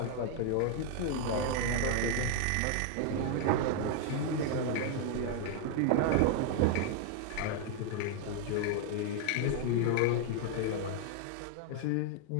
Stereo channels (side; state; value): both; different; correlation 0.00